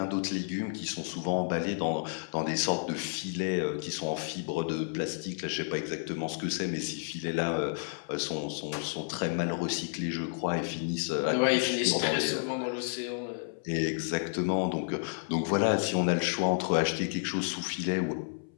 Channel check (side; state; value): right; silent; 57 dB below the other